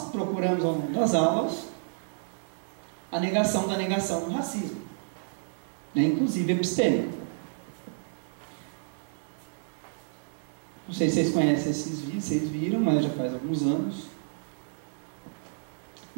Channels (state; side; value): silent; left; digital silence